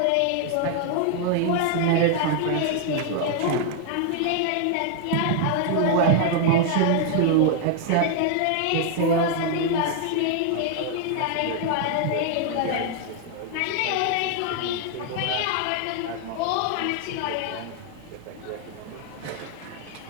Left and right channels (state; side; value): different; both; correlation 0.00